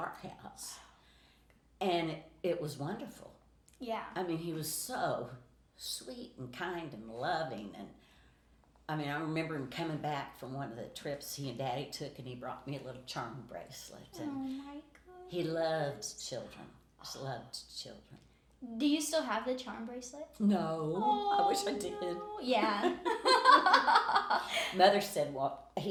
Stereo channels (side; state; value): both; identical; correlation 1.00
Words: house. And it was wonderful. Yeah. I mean, he was so sweet and kind and loving. And I mean, I remember him coming back from one of the trips he and Daddy took, and he brought me a little charm bracelet. And Oh, my goodness. he loved children. Just loved children. Do you still have the charm bracelet? No, I wish I did. No. Yeah. Mother said, well,